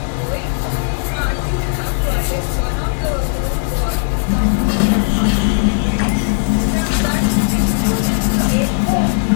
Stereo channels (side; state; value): right; silent; digital silence